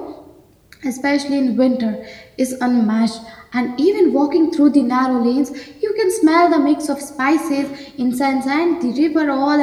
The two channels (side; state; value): both; identical; correlation 1.00